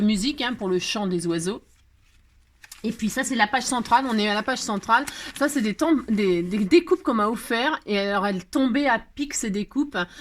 musique hein, pour le chant des oiseaux. Et puis ça, c'est la page centrale. On est à la page centrale. Ça, c'est des découpes qu'on m'a offert. Et alors, elles tombaient à pic, ces découpes.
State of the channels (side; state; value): both; identical; correlation 1.00